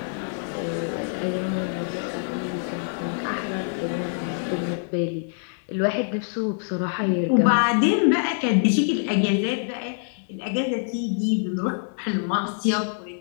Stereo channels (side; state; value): right; silent; digital silence